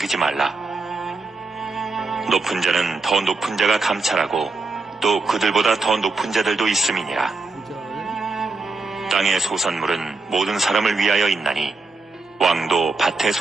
말라. 높은 자는 더 높은 자가 감찰하고 또 그들보다 더 높은 자들도 있음이니라. 땅의 소산물은 모든 사람을 위하여 있나니 왕도 밭의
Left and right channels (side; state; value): left; quieter; 3.6 dB